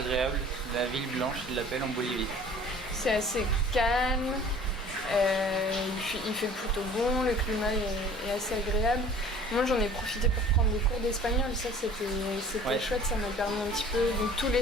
la ville blanche ils l'appellent en Bolivie. C'est assez calme. Il fait plutôt bon, le climat est assez agréable. Moi j'en ai profité pour prendre des cours d'espagnol, ça c'était chouette, ça m'a permis un petit peu. Donc tous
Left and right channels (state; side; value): normal; both; correlation 0.48